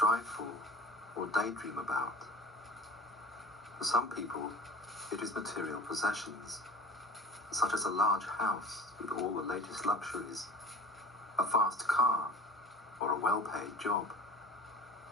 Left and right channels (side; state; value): both; normal; correlation 0.38